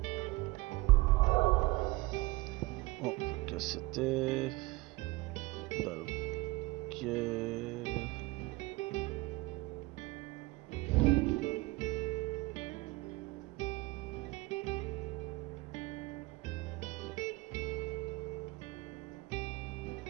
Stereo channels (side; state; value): left; quieter; 21.6 dB